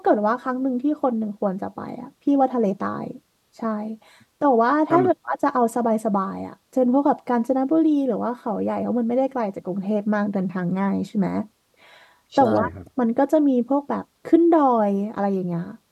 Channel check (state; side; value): identical; both; correlation 1.00